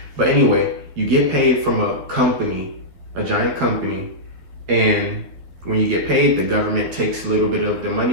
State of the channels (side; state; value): left; late; 12 ms